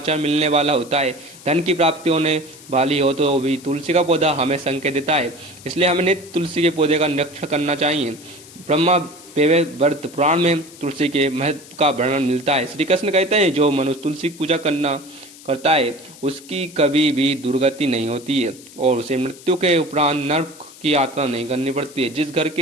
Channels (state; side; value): noise; left; hiss, 20 dB below the sound